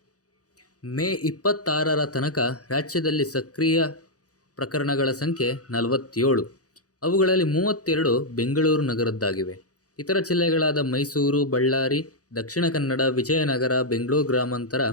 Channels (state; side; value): late; right; 0.67 ms